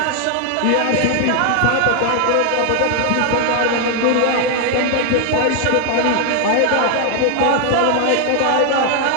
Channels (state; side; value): different; both; correlation 0.00